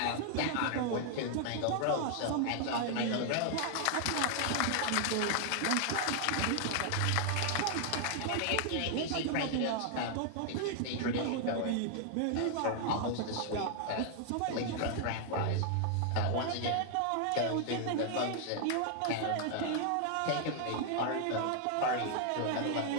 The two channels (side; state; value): both; different; correlation 0.00